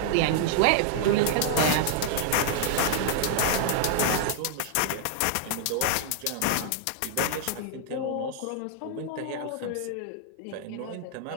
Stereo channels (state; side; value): different; both; correlation -0.01